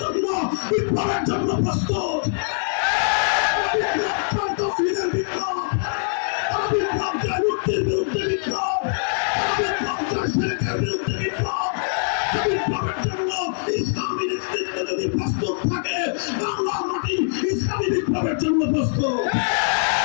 বিপ্লবের জন্য প্রস্তুত। মুক্তির বিরুদ্ধে বিপ্লব, বিরুদ্ধে বিপ্লব, বিপ্লবের জন্য ইসলামী নেতৃত্ব যদি প্রস্তুত থাকে, বাংলার মাটি ইসলামী বিপ্লবের জন্য প্রস্তুত।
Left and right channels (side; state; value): right; silent; digital silence